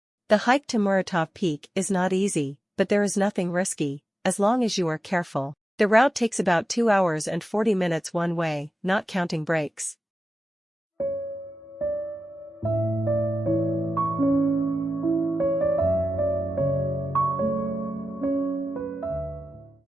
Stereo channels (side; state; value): both; normal; correlation 0.92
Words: The hike to Muratov Peak is not easy, but there is nothing risky, as long as you are careful. The route takes about 2 hours and 40 minutes one way, not counting breaks.